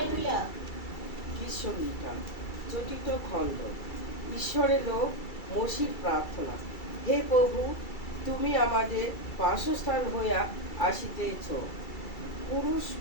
Gita চতুর্থ খণ্ড। ঈশ্বরের লোক মসির প্রার্থনা। হে প্রভু, তুমি আমাদের বাসস্থান হইয়া আসিতেছ,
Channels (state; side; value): late; right; 2.3 ms